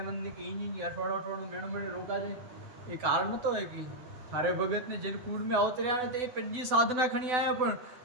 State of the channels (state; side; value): late; left; 8.0 ms